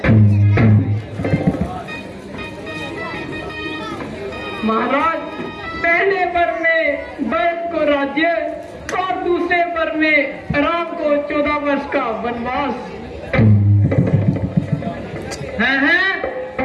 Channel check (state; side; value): identical; both; correlation 1.00